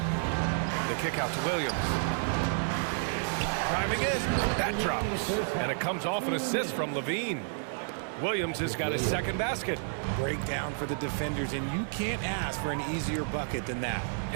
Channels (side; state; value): left; silent; 57 dB below the other